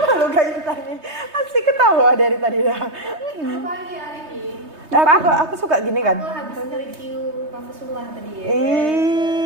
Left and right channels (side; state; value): left; late; 3.2 ms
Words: lu gak Intan nih? Asik ketawa dari tadi dah. Pagi hari ini. Aku suka gini kan. Aku habis review kampus sebelah tadi ya.